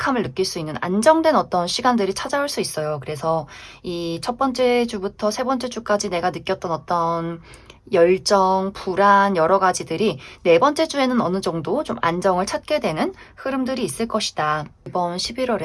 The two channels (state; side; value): identical; both; correlation 1.00